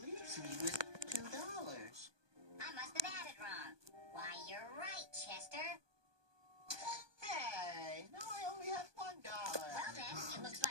leaves me with $2. I must have added wrong. Why, you're right, Chester. Hey, no, I only have $1. Well then, it looks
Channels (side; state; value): left; late; 1.2 ms